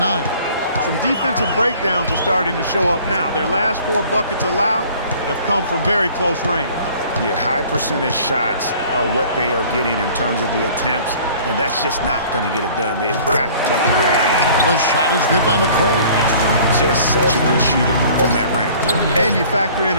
Some defensive breakdowns are starting to show up now. Their last 4 buckets allowed have come from very close range. Yeah, high percentage shots are what they are getting in terms of the attempts, and that's just not going to get it done. They've got to figure it out. The shot is good by McCray. Just such a good shooter from that range. And you factor in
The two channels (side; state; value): both; inverted; correlation -0.50